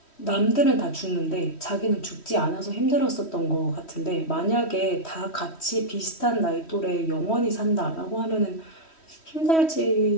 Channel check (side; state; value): right; late; 3.1 ms